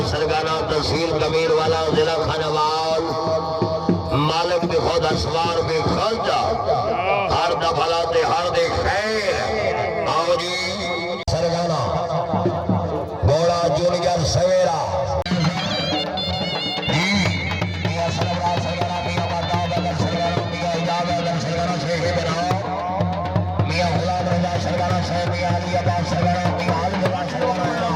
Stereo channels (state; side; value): identical; both; correlation 1.00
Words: सरगाना तहसील कमीर वाला जिला खानावाल मालिक भी खुद असवार भी खर्चा हर दफलाते हर दे खैर आओ जी सरगाना घोड़ा जूनियर सवेरा